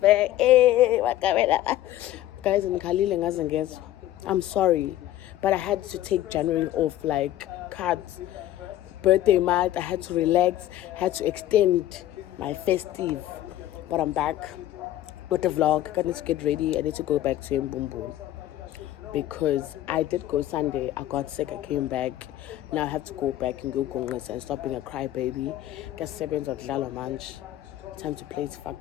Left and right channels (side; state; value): right; quieter; 13.7 dB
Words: Hey, Makabela. Guys, I'm sorry, but I had to take January off, like cards. Birthday month, I had to relax, had to extend my festive. But I'm back with the vlog. I need to get ready. I need to go back to Mbumbu because I did go Sunday. I got sick. I came back. Now I have to go back and go Congress and stop being a crybaby. Get 7 of Lalo Manch. Time to play. It's